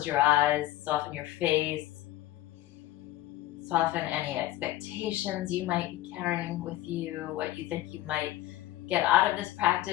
your eyes, soften your face. Soften any expectations you might be carrying with you, what you think you might get out of this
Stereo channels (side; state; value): right; quieter; 15.3 dB